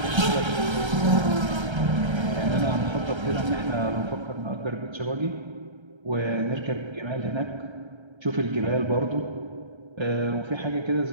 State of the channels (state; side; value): late; left; 1.3 ms